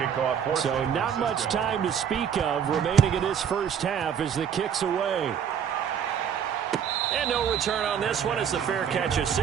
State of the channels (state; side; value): quieter; left; 8.2 dB